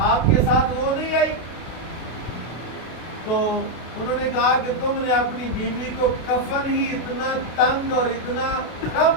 آپ کے ساتھ وہ نہیں آئی؟ تو انہوں نے کہا کہ تم نے اپنی بیوی کو کفن ہی اتنا تنگ اور اتنا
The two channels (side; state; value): right; late; 32 ms